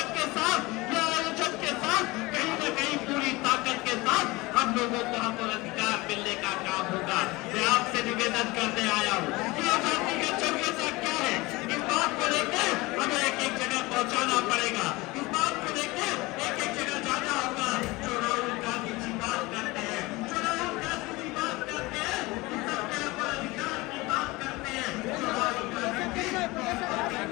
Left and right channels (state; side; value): quieter; right; 22.2 dB